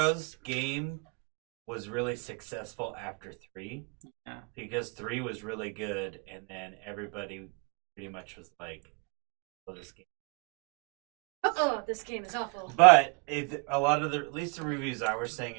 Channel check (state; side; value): quieter; left; 33.9 dB